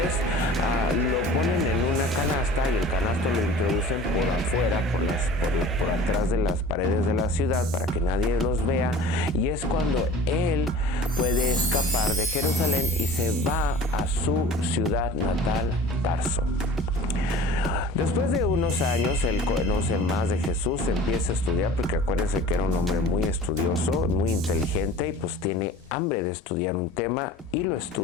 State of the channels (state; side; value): normal; both; correlation 0.42